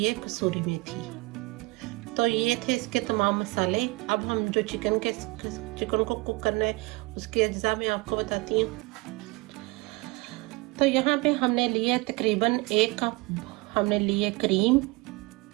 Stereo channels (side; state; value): left; quieter; 25.0 dB